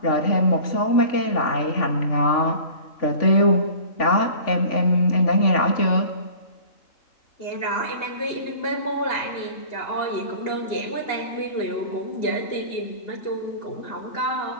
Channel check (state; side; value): late; right; 3.5 ms